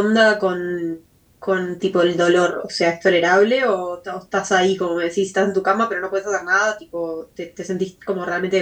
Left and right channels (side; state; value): both; identical; correlation 1.00